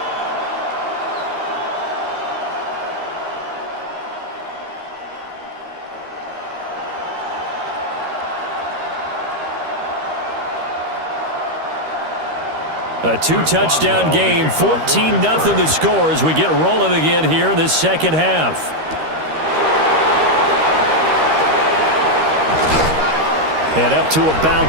A 2-touchdown game, 14-0 the score as we get rolling again here in this 2nd half. And up to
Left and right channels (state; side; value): late; left; 13 ms